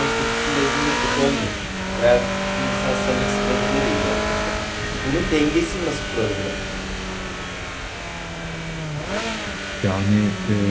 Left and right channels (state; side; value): identical; both; correlation 1.00